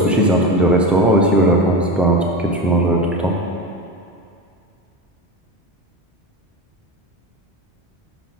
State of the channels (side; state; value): both; normal; correlation 0.23